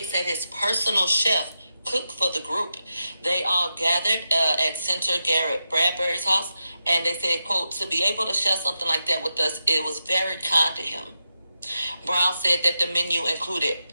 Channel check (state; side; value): inverted; both; correlation -0.88